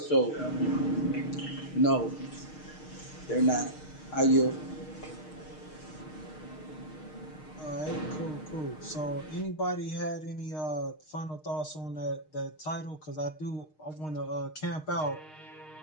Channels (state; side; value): late; right; 6.5 ms